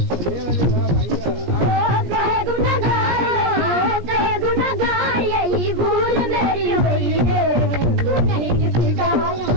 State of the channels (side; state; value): left; late; 17 ms